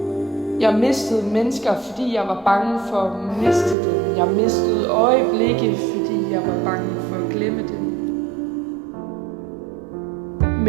Jeg mistede mennesker, fordi jeg var bange for at miste dem. Jeg mistede øjeblikke, fordi jeg var bange for at glemme dem.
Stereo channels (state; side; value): drops out; left; at 3.8 s